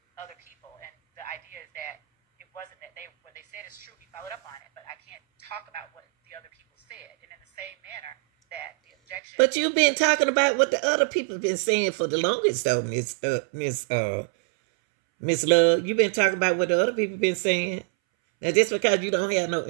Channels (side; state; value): left; drops out; at 9.2 s